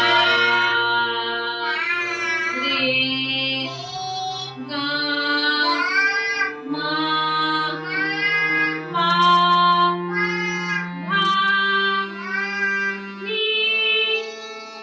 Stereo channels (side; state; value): both; identical; correlation 1.00